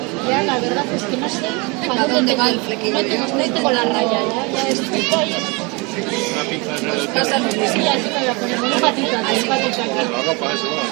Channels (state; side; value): quieter; left; 28.3 dB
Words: Ya, la verdad es que no sé para dónde va el flequillo. No tengo la raya, ya estoy ahí. Una pinza en el Pasa lo Sí, mismo. así me voy a poner una patita aquí, una patita aquí. La ropa, eso